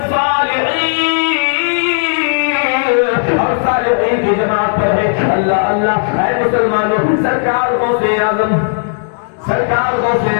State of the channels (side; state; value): right; silent; digital silence